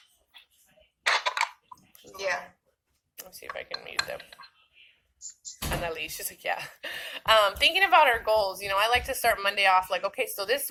Yeah. Let's see if I can mute them. Annalise, she's like, yeah. Thinking about our goals, I like to start Monday off like, okay, so this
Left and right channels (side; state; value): both; identical; correlation 1.00